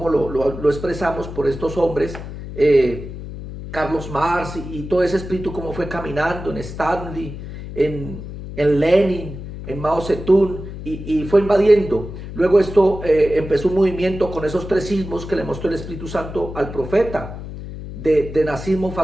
lo expresamos por estos hombres, Carlos Marx y todo ese espíritu como fue caminando en Stanley, en Lenin, en Mao Zedong, y fue invadiendo. Luego esto empezó un movimiento con esos tres sismos que le mostró el Espíritu Santo al profeta, de nazismo,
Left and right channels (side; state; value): left; noise; hum, 10 dB below the sound